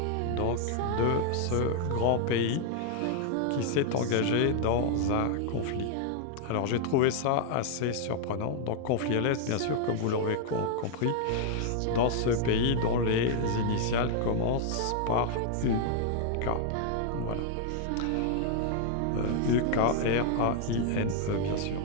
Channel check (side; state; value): both; different; correlation 0.00